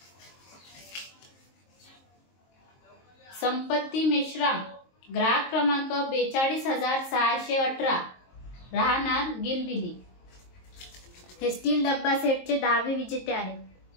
संपत्ती मेश्राम, ग्राहक क्रमांक 42,618, राहणार गिलबिली. हे स्टील डब्बा सेटचे 10वे विजेते आहेत.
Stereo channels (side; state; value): right; late; 22 ms